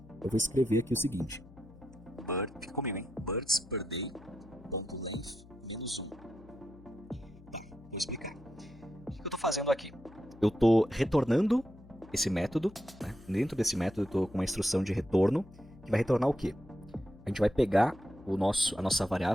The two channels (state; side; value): noise; left; hum, 22 dB below the sound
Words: Eu vou escrever aqui o seguinte. Fica comigo, hein? Birds per day, .length, -1. Tá, vou explicar. O que eu estou fazendo aqui? Eu estou retornando esse método, né? Dentro desse método eu estou com uma instrução de retorno, que vai retornar o quê? A gente vai pegar a nossa